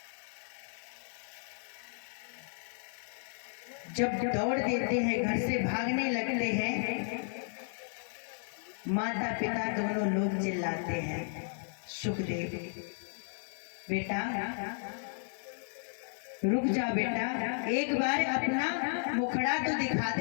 जब दौड़ देते हैं, घर से भागने लगते हैं, माता पिता दोनों लोग चिल्लाते हैं सुखदेव बेटा रुक जा बेटा, एक बार अपना मुखड़ा तो दिखा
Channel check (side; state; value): right; silent; digital silence